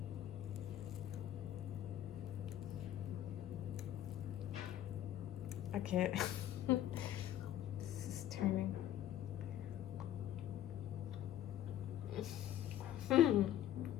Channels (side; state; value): right; quieter; 11.9 dB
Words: Okay, this is turning.